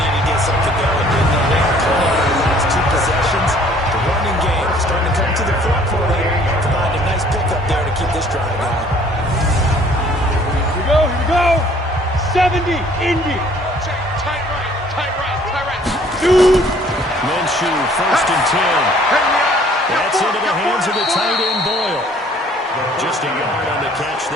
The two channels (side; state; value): both; normal; correlation 0.57